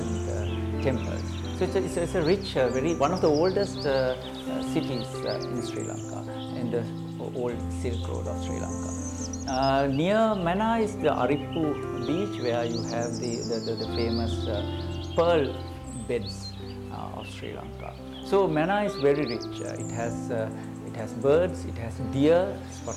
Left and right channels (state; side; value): identical; both; correlation 1.00